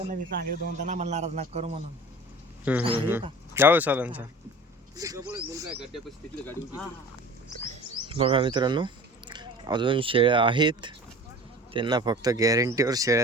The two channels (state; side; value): normal; both; correlation 0.40